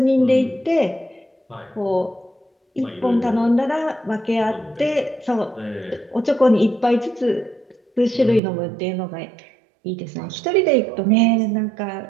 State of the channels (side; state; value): left; drops out; at 8.4 s